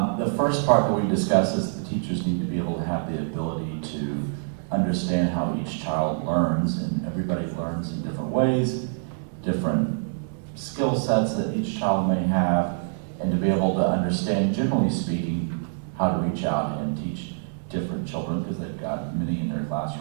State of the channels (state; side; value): silent; left; digital silence